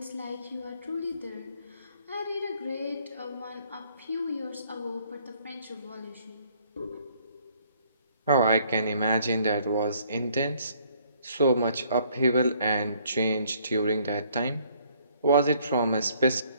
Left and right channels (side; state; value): both; inverted; correlation -0.63